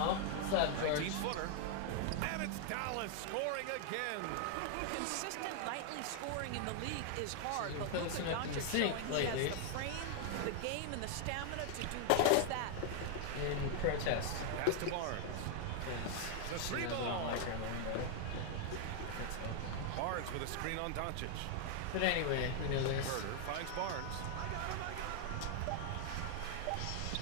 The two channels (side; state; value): both; different; correlation 0.00